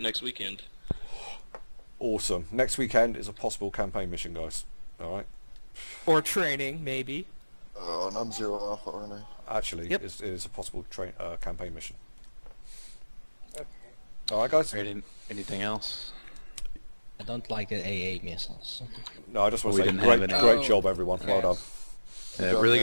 next weekend. Awesome. Next weekend is a possible campaign mission, guys. All right. or training maybe. Oh, and I'm 0 Alpha, aren't I? Actually, Yep. it is a possible campaign mission. All right, guys. Anything else? I don't like the AA missiles. No, I just want We to say didn't have great any. job, everyone. Well done. Really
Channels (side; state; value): both; inverted; correlation -1.00